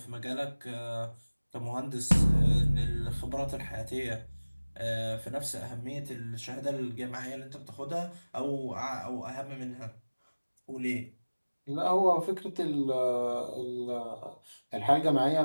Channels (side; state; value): both; inverted; correlation -1.00